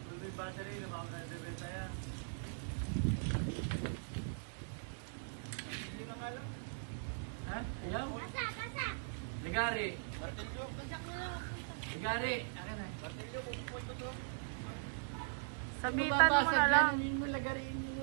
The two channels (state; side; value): silent; left; digital silence